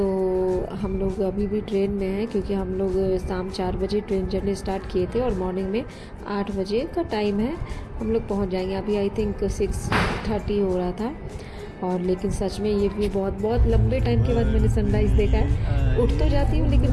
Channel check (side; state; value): both; identical; correlation 1.00